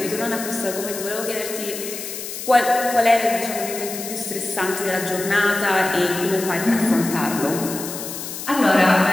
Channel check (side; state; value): left; noise; hiss, 8 dB below the sound